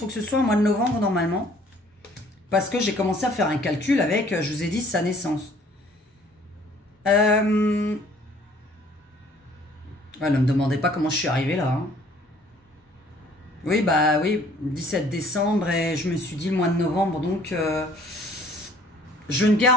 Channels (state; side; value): normal; both; correlation 0.57